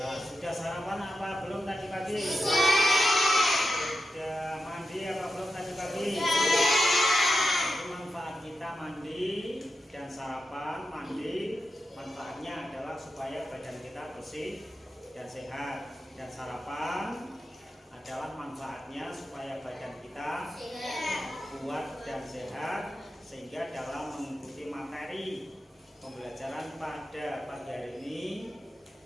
sudah sarapan apa belum tadi pagi? Sudah mandi apa belum tadi pagi? Itu manfaat kita mandi dan sarapan. Mandi manfaatnya adalah supaya badan kita bersih dan sehat, dan sarapan adalah manfaatnya supaya badan kita kuat dan sehat, sehingga dalam mengikuti materi pembelajaran pada pagi hari ini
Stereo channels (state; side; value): normal; both; correlation 0.90